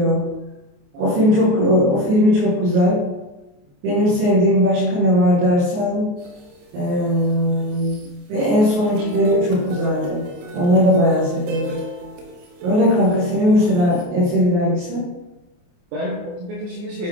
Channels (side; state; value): left; late; 28 ms